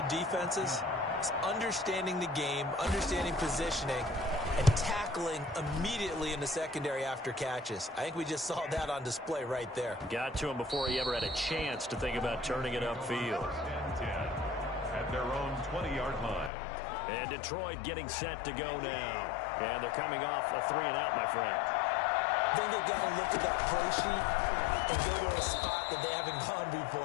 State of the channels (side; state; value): right; drops out; at 16.5 s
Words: defenses is understanding the game, understanding positioning, and tackling immediately in the secondary after catches. I think we just saw that on display right there. Got to him before he ever had a chance to think about turning it upfield. At their own 20-yard line. And Detroit getting set to go now. And they're coming off a 3-and-out, my friend. I think they've got to look at that play sheet and go to a spot that they haven't gone